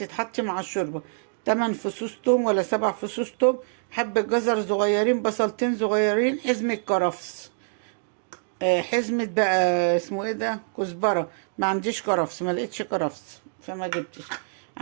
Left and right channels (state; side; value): silent; left; digital silence